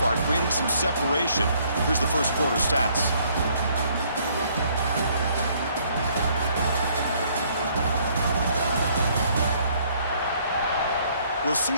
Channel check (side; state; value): both; inverted; correlation -0.64